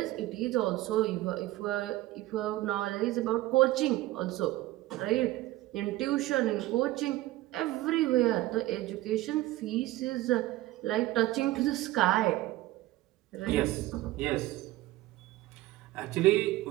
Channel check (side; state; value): left; quieter; 16.8 dB